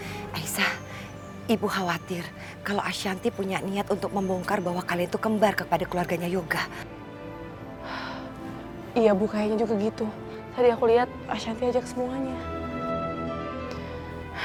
Aisyah, ibu khawatir kalau Ashanti punya niat untuk membongkar bahwa kalian itu kembar kepada keluarganya Yoga. Iya Bu, kayaknya juga gitu. Tadi aku lihat Ashanti ajak semuanya.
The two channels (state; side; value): identical; both; correlation 1.00